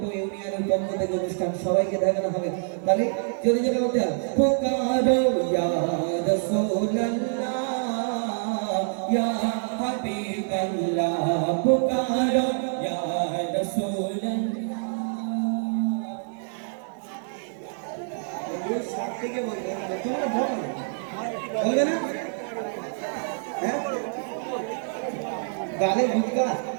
ইউনিয়নের পক্ষ থেকে অনুষ্ঠান সবাইকে দেখানো হবে তাহলে জোরে জোরে বলতে হবে পুকারো ইয়া রাসূলুল্লাহ ইয়া হাবিবাল্লাহ পুকারো ইয়া রাসূলুল্লাহ সাত থেকে বলবে তোমরা বলবে না হ্যাঁ গালে ভুটকা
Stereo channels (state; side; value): silent; left; 61 dB below the other